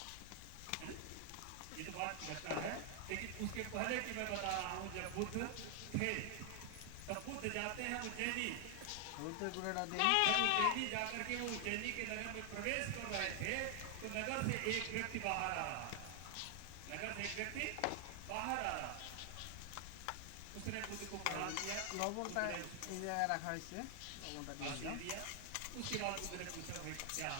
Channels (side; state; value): both; different; correlation 0.00